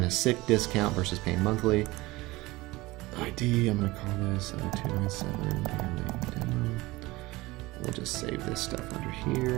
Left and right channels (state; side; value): quieter; left; 20.5 dB